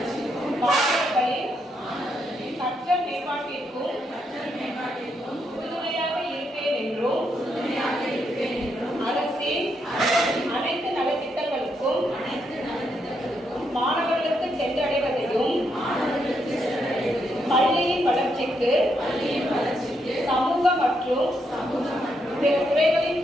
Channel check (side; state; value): both; normal; correlation 0.78